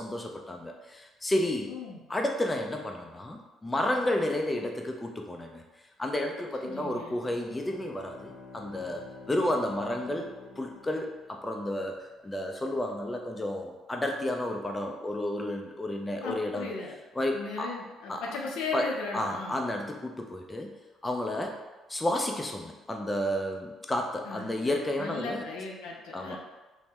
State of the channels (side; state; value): both; normal; correlation 0.82